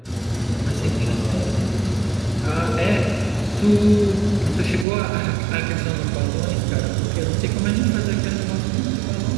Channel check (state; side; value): drops out; left; at 4.9 s